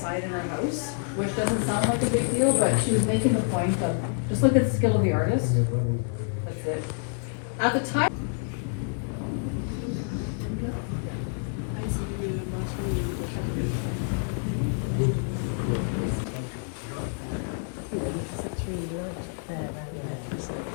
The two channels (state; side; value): silent; right; 60 dB below the other